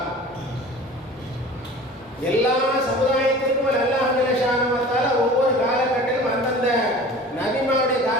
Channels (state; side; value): normal; both; correlation 0.41